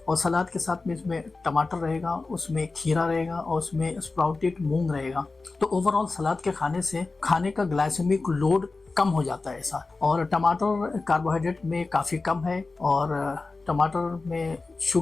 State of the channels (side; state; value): right; quieter; 3.7 dB